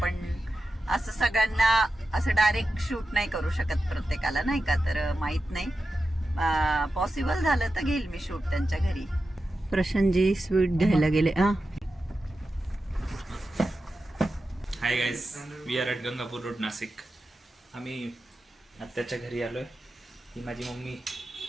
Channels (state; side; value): normal; both; correlation 0.91